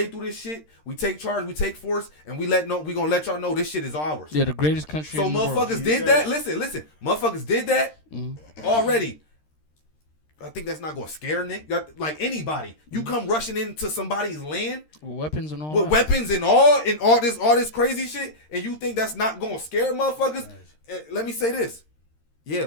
through this shit. We take charge. We take force, and we gonna let y'all know this shit is ours. Yeah, the greatest country. So in the motherfuckers world. did that. Listen. Motherfuckers did that already. I think that's not gonna scare Nick. Like anybody, you come rushing into somebody's land with weapons and all. With weapons and all this crazy shit, and you think that's not gonna scare motherfuckers? Nice. Let me say this. Yeah,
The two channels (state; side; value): late; right; 13 ms